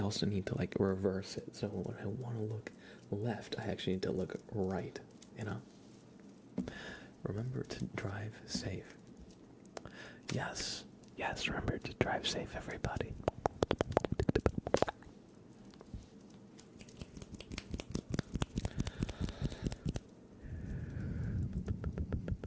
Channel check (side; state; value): both; identical; correlation 1.00